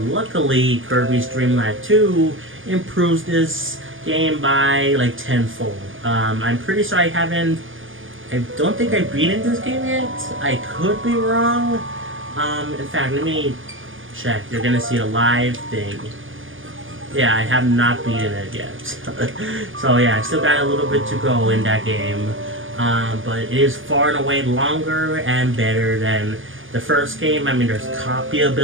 luckily, Kirby's Dream Land 2 improves this game by like tenfold. I'm pretty sure I don't think I beaten this game yet. I could be wrong. In fact, let me check. You're gonna see a live thing. Yeah, I have not beaten it yet. So yeah, I still got a little bit to go in that game. But it is far and away longer and better than the first game. I mean, there's copy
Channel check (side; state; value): left; late; 0.58 ms